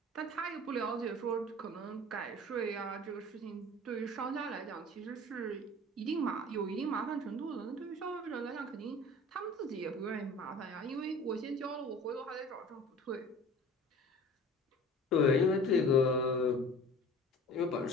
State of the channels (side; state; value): both; normal; correlation 0.42